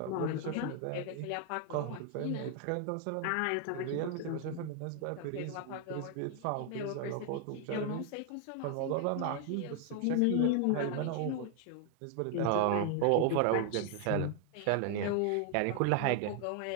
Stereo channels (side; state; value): both; different; correlation 0.00